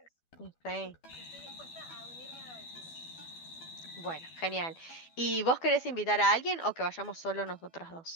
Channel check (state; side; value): late; right; 12 ms